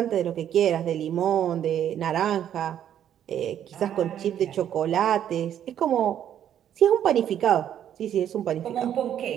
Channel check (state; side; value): quieter; left; 10.2 dB